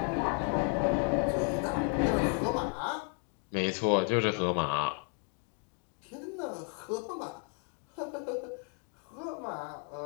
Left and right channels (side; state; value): right; quieter; 39.6 dB